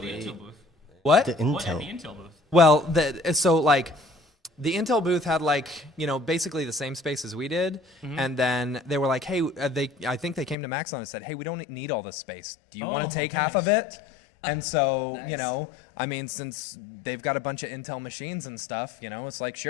the Intel booth? What? The Intel. What at the Intel booth? Well, the Intel booth had basically the same space as we did, and then they were like, hey, I think they came to Maxon and said, hey, we don't need all this space. Do you want to take half of it? And so, nice. Since they've got a bunch of Intel machines and stuff, it's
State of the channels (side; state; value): right; drops out; at 10.6 s